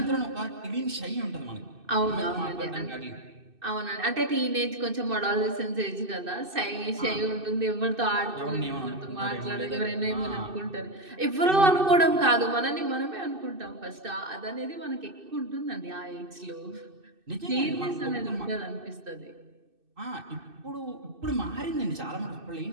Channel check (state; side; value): late; left; 2.6 ms